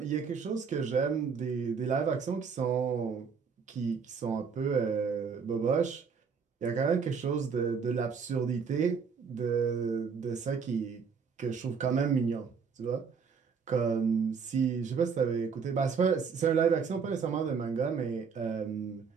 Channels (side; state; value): left; quieter; 5.9 dB